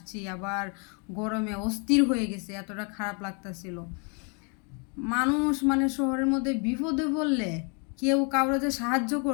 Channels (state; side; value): quieter; right; 36.0 dB